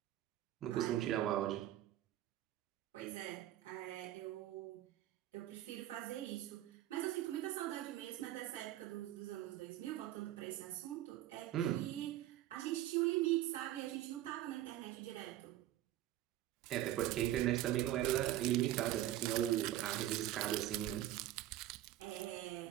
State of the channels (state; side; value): quieter; left; 13.7 dB